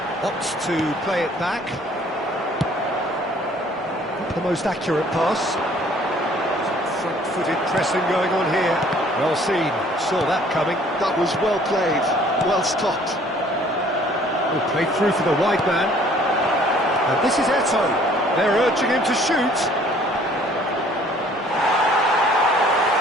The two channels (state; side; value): normal; both; correlation 0.57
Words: opts to play it back. Not the most accurate pass. Front-footed pressing going on here. Well seen. Saw that coming. That was well played. Well stopped. Oh, played through for the wide man. And this is Eto'o. They're urging him to shoot.